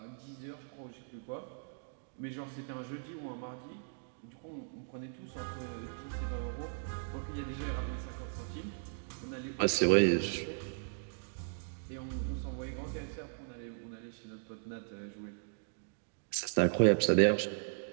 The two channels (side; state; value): left; silent; digital silence